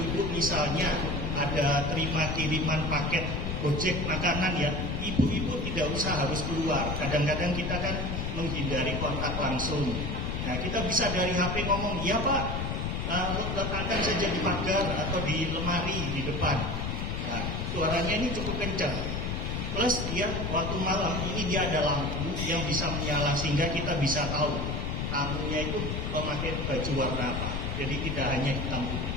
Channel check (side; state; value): left; noise; rumble, 2 dB below the sound